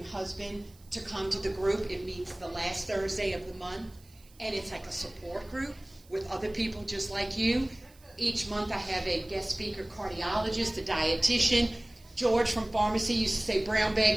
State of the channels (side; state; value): right; noise; hiss, 27 dB below the sound